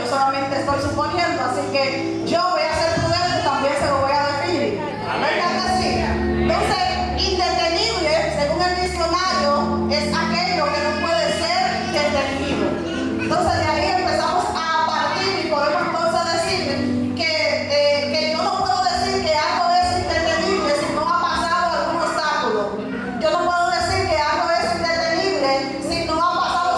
yo solamente estoy suponiendo, así que yo voy a ser prudente y también se lo voy a definir. ¿Verdad que sí? Entonces, indetenible, según el diccionario, es aquello que no puede ser detenido. Entonces, de ahí empezamos a partir y podemos entonces decir que yo no puedo decir que algo es indetenible si no ha pasado algún obstáculo. Yo no puedo decir que algo es indetenible si no ha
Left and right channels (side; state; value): both; identical; correlation 1.00